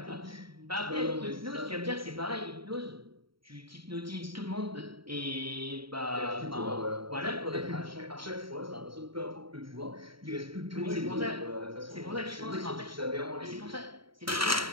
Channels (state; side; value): late; left; 0.74 ms